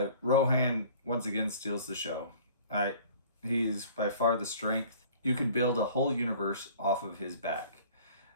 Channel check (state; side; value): inverted; both; correlation -0.49